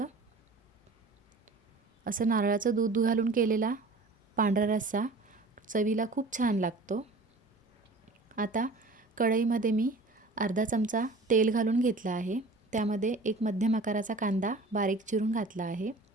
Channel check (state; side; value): quieter; left; 3.3 dB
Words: असं नारळाचं दूध घालून केलेला पांढरा रस्सा चवीला खूप छान लागतो। आता कढईमध्ये मी अर्धा चमचा तेल घालून घेतला आहे। त्यामध्ये एक मध्यम आकाराचा कांदा बारीक चिरून घातला आहे,